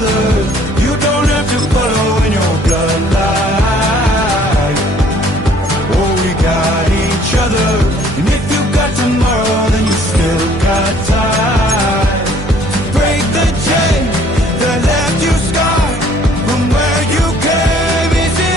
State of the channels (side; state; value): both; normal; correlation 0.58